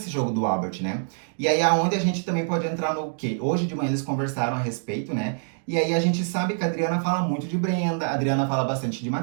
jogo do Albert, né? E aí, aonde a gente também pode entrar no quê? Hoje de manhã eles conversaram a respeito, né? E aí a gente sabe que a Adriana fala muito de Brenda, a Adriana fala bastante de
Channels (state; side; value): silent; left; digital silence